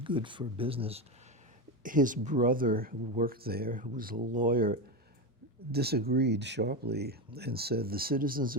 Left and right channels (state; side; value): normal; both; correlation 0.14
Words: for business. His brother, who worked there, who was a lawyer, disagreed sharply and said the citizens